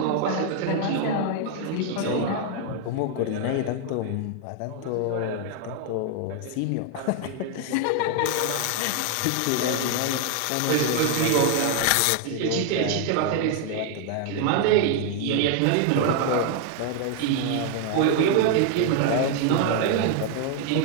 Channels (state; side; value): different; both; correlation 0.00